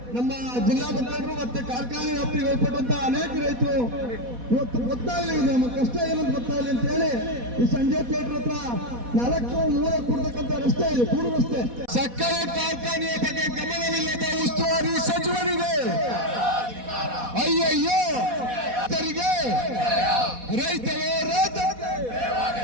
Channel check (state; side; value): late; left; 4.1 ms